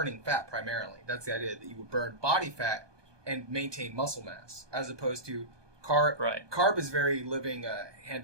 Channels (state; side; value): late; left; 1.2 ms